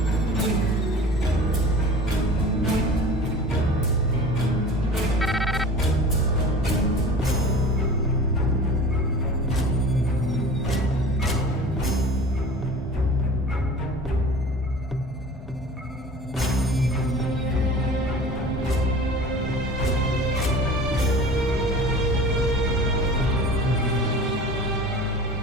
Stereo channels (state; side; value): normal; both; correlation 0.40